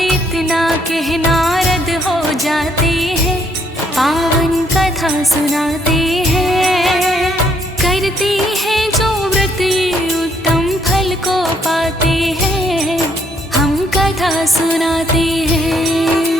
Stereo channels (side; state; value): both; normal; correlation 0.70